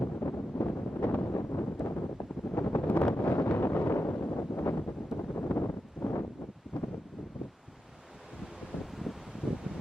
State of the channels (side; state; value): both; normal; correlation 0.90